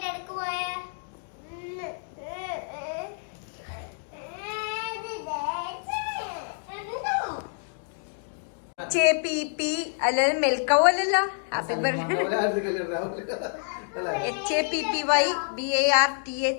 ഇടക്ക് പോയ അല്ലാതെ മെൽക്കവോ അല്ലല്ലോ. Happy birthday.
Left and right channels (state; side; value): silent; right; digital silence